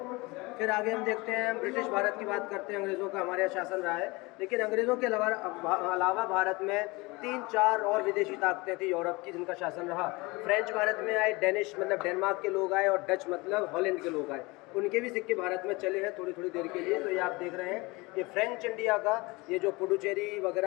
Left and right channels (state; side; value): quieter; right; 24.2 dB